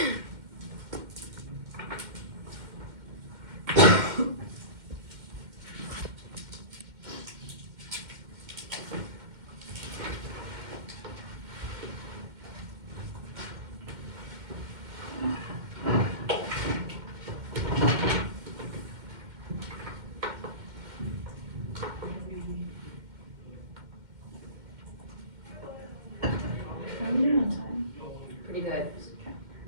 How are we doing on time? Pretty good.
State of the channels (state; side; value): late; left; 2.1 ms